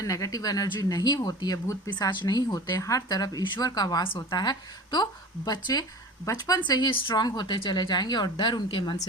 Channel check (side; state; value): both; normal; correlation 0.37